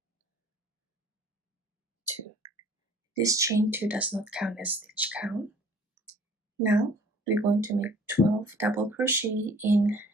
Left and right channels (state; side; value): normal; both; correlation 0.53